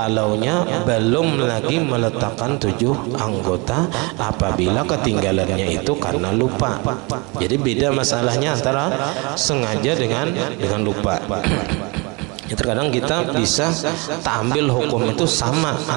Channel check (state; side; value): quieter; left; 28.5 dB